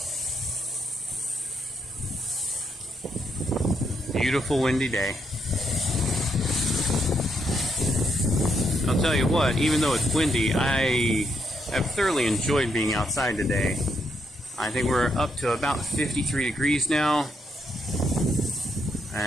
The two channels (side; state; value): both; normal; correlation 0.77